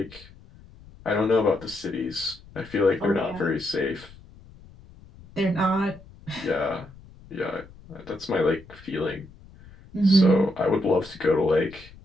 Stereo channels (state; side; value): noise; left; rumble, 22 dB below the sound